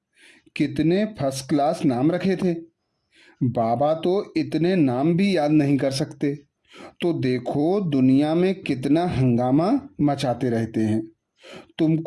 कितने फर्स्ट क्लास नाम रखे थे। बाबा तो इतने नाम भी याद नहीं कर सकते। तो देखो दुनिया में कितना हंगामा मचाते रहते हैं।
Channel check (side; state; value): both; identical; correlation 1.00